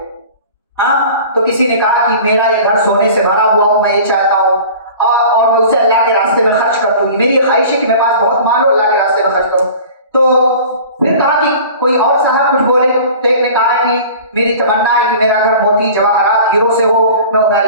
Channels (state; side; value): inverted; both; correlation -0.42